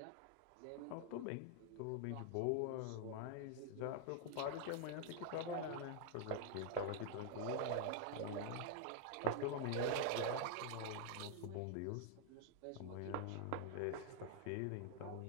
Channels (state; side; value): different; both; correlation 0.00